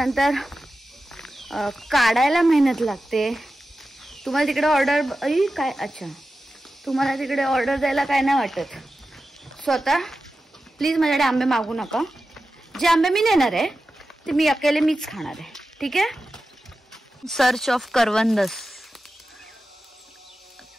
काढायला मेहनत लागते. तुम्हाला तिकडे ऑर्डर काय, अच्छा तुम्हाला तिकडे ऑर्डर द्यायला काय नाही वाटत. स्वतः प्लीज माझ्याकडे आंबे मागू नका. जे आंबे मी नेणार आहे ते मी अकेले मीच खाणार आहे, ठीक आहे. Search of करवंदस.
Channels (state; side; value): normal; both; correlation 0.93